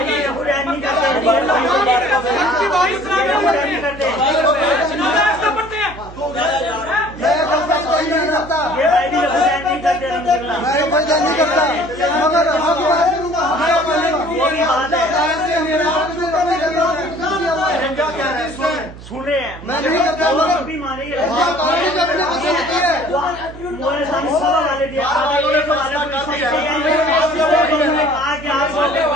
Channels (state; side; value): noise; right; hum, 16 dB below the sound